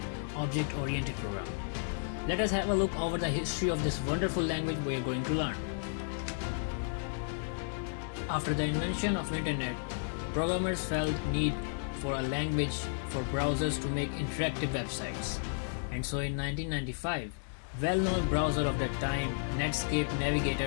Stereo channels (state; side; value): silent; right; digital silence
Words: object-oriented programming. Let us have a look over the history of this wonderful language we are going to learn. After the invention of internet, programmers felt need for a language for browsers to make interactive websites. And so in 1995, well-known browser of that time, Netscape Navigator,